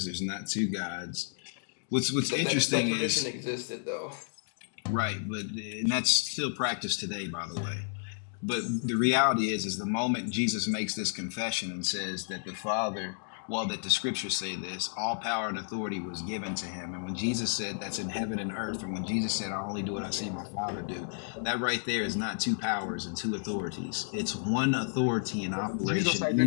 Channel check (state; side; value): silent; right; digital silence